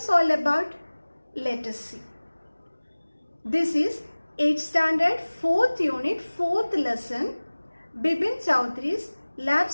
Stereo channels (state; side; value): inverted; both; correlation -1.00